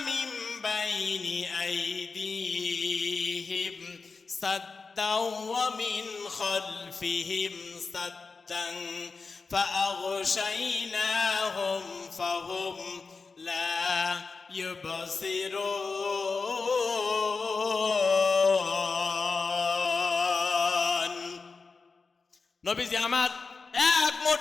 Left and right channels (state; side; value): quieter; right; 4.4 dB